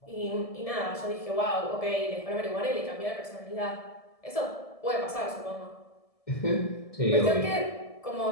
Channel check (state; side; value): late; right; 1.7 ms